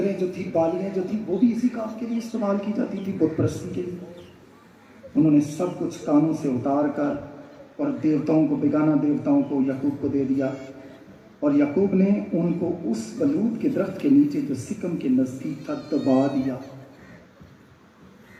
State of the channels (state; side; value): identical; both; correlation 1.00